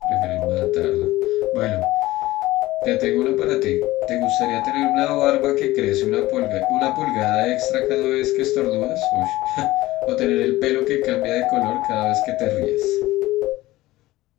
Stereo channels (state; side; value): quieter; right; 17.6 dB